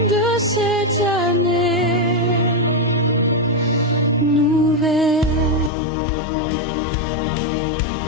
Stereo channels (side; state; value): right; drops out; at 5.7 s